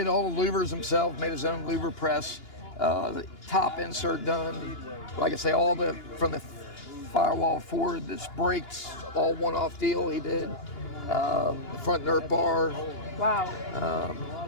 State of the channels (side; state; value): right; late; 2.9 ms